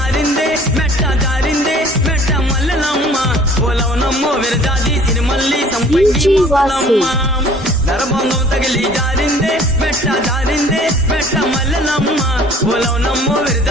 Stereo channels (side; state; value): both; normal; correlation 0.51